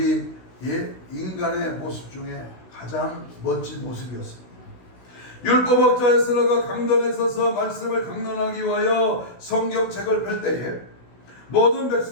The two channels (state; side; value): late; right; 16 ms